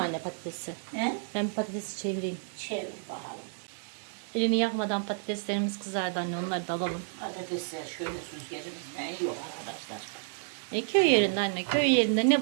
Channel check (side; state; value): left; silent; digital silence